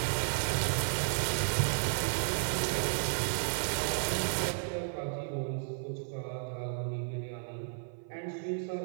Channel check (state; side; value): silent; left; 56 dB below the other